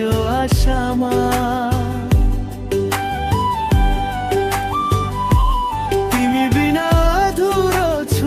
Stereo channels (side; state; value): both; identical; correlation 1.00